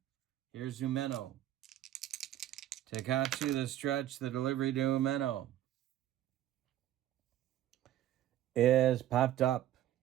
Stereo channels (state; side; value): quieter; left; 12.7 dB